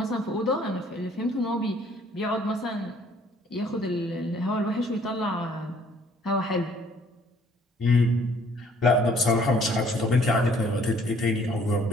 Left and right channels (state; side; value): normal; both; correlation 0.60